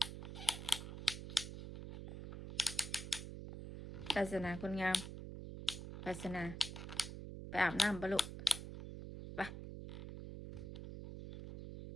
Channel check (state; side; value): noise; right; hum, 8 dB below the sound